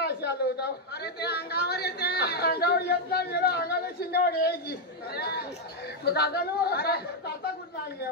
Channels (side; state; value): both; normal; correlation 0.01